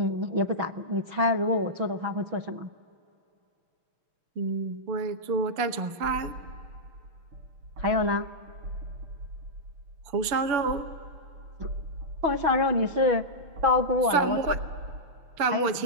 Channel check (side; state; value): left; late; 6.9 ms